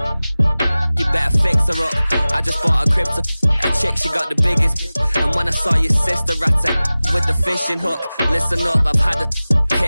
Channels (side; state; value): both; inverted; correlation -0.98